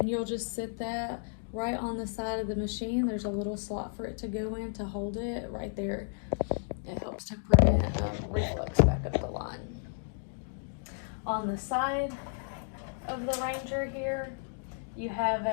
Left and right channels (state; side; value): silent; right; digital silence